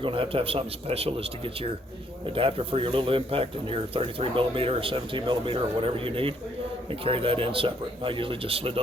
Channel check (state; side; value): normal; both; correlation 0.68